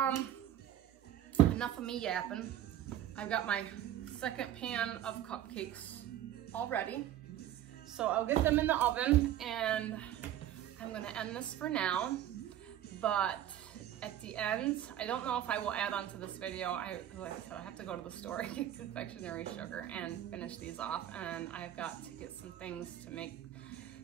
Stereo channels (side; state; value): left; quieter; 11.8 dB